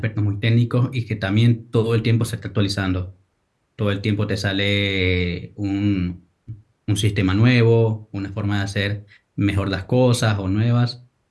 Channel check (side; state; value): both; identical; correlation 1.00